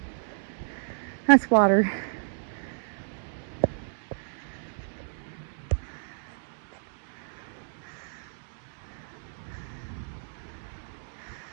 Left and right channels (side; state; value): left; silent; digital silence